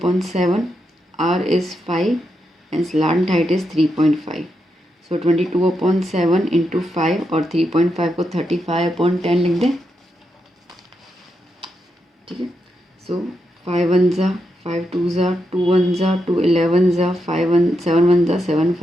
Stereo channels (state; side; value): normal; both; correlation 0.84